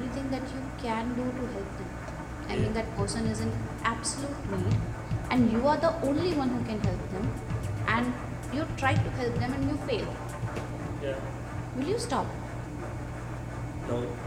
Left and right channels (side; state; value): both; identical; correlation 1.00